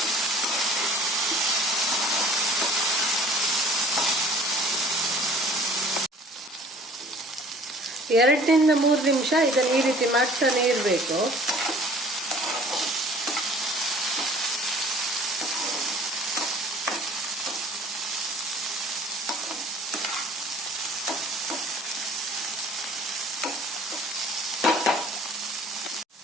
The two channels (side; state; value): both; normal; correlation 0.51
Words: ಎರಡರಿಂದ 3 ನಿಮಿಷ ಇದನ್ನು ಈ ರೀತಿ ಮಾಡ್ತಾನೆ ಇರಬೇಕು.